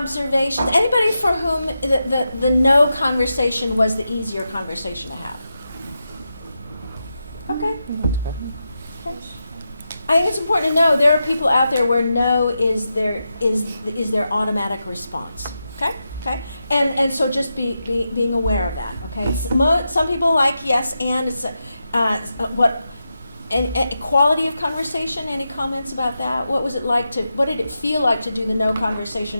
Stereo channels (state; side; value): inverted; both; correlation -0.88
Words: Anybody for whom the no conversation was the easier conversation to have? Okay. Okay. I think it's important to know there are people out there where no is their automatic response. Okay. Okay. And so just being aware of that. Okay. Some people like yes and it's what. And quality of conversation, any comments about that? What was it like what did it feel like to do the no